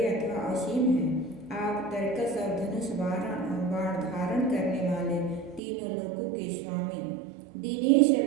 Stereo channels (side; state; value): left; drops out; at 5.6 s